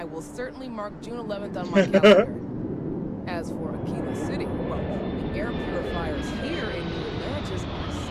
will certainly mark June 11th on my calendar. As for Aquila City, well, the air purifiers here in New Atlantis are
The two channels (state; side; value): identical; both; correlation 1.00